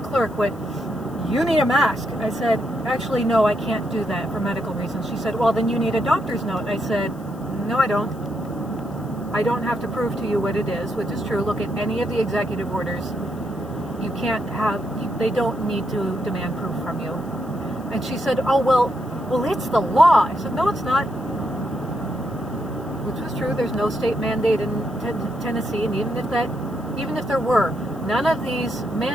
went, you need a mask. I said, actually, no, I can't do that for medical reasons. She said, well, then you need a doctor's note. I said, no, I don't. I don't have to prove to you what it is, which is true. Look at any of the executive orders. You can't have, they don't need to demand proof from you. And she said, oh, well, it's the law. I said, no, it's not. Which was true. There's no state mandate in Tennessee, and even if there were, none of these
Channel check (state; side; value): noise; left; hiss, 27 dB below the sound